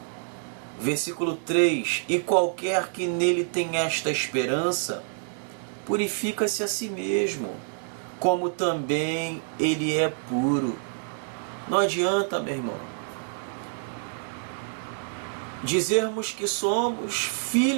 Versículo 3: e qualquer que nele tem esta esperança, purifica-se a si mesmo, como também ele é puro. Não adianta, meu irmão, dizermos que somos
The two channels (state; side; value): silent; left; digital silence